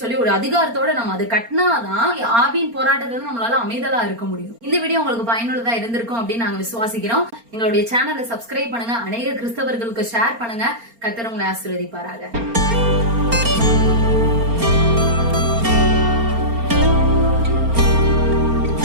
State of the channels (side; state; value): left; late; 4.3 ms